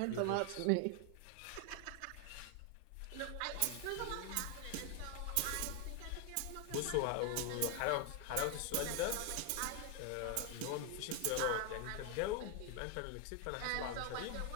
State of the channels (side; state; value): both; different; correlation 0.01